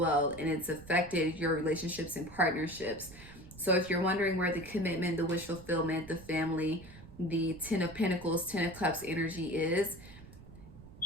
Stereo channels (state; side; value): noise; right; rumble, 18 dB below the sound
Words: and it's affected your relationships and partnerships. So if you're wondering where the commitment, the wish fulfillment, the family, the 10 of Pentacles, 10 of Cups energy is,